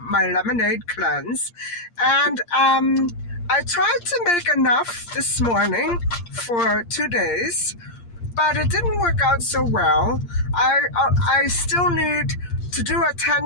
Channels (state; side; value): late; right; 8.6 ms